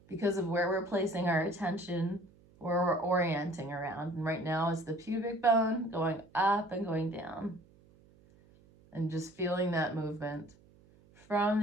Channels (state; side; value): noise; right; hum, 28 dB below the sound